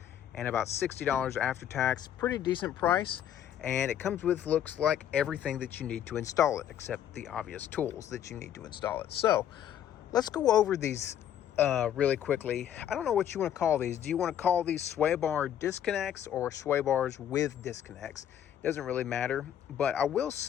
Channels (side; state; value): right; quieter; 10.2 dB